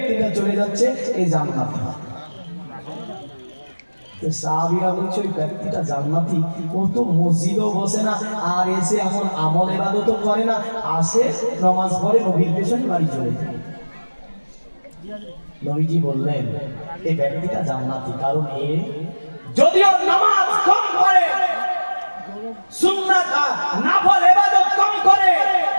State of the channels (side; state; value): both; inverted; correlation -1.00